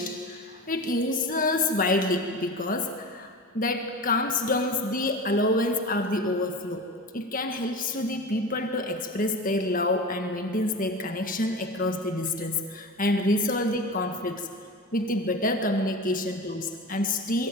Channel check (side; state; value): both; normal; correlation 0.30